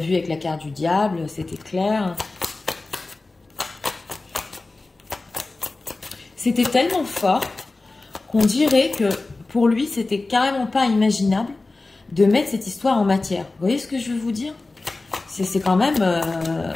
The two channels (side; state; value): right; quieter; 3.3 dB